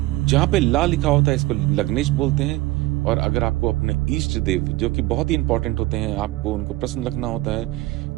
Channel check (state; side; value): quieter; left; 18.5 dB